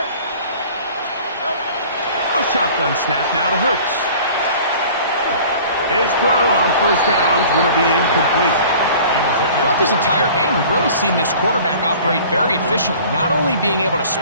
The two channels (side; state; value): both; inverted; correlation -0.46